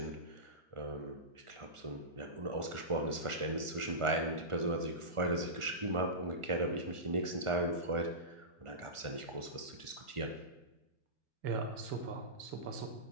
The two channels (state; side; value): late; left; 1.4 ms